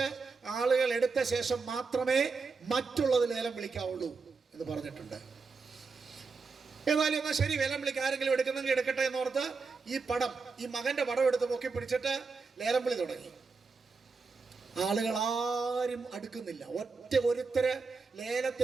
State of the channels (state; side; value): quieter; left; 4.6 dB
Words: ആളുകൾ എടുത്ത ശേഷം മാത്രമേ മറ്റുള്ളത് ലേലം വിളിക്കാവുള്ളൂ എന്ന് പറഞ്ഞിട്ടുണ്ട്. ഏതായാലും എന്നാൽ ശരി, ലേലം വിളിക്കാൻ ആരെങ്കിലും എടുക്കുന്നെങ്കിൽ എടുക്കട്ടെ എന്നോർത്ത് ഈ മകന്റെ പടം എടുത്ത് പൊക്കി പിടിച്ചിട്ട് ലേലം വിളി തുടങ്ങി. ആളുകൾ ആരും അടുക്കുന്നില്ല. ഒരുത്തര്